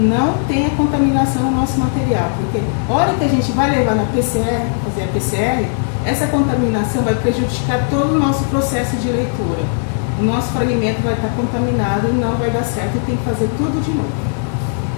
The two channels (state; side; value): silent; right; digital silence